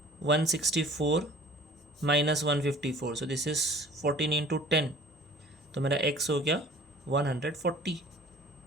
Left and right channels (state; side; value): normal; both; correlation 0.48